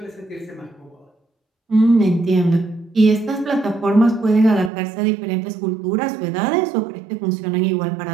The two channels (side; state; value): left; drops out; at 4.7 s